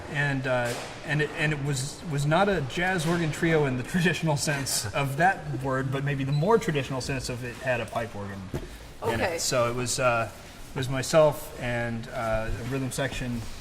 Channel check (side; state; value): both; identical; correlation 1.00